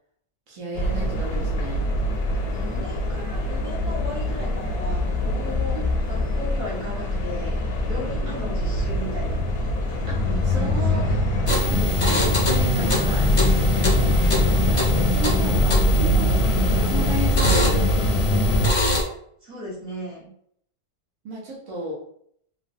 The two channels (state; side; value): late; left; 1.5 ms